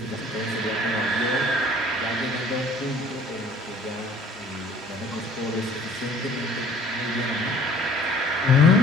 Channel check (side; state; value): both; normal; correlation 0.53